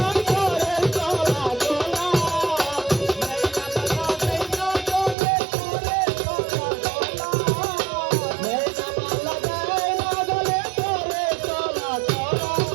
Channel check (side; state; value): left; drops out; at 5.2 s